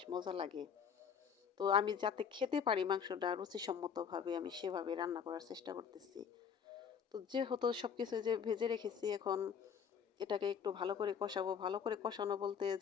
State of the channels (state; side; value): quieter; right; 7.1 dB